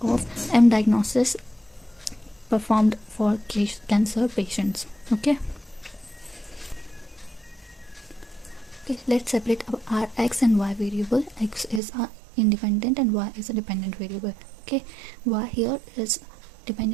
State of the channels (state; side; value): drops out; left; at 11.8 s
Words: of M diagnosis performed for cancer patients. Okay, let's separate our x and y variable. X is a independent and y is a dependent variable. Okay, y here is